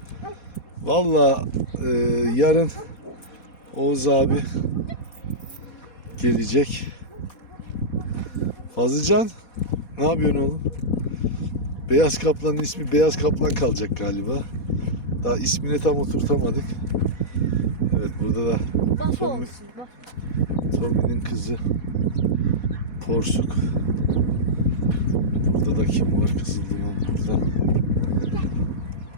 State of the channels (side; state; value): right; late; 4.2 ms